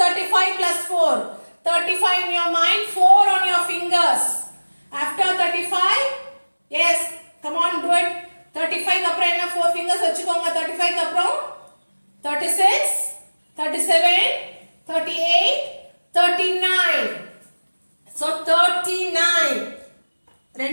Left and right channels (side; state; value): both; inverted; correlation -1.00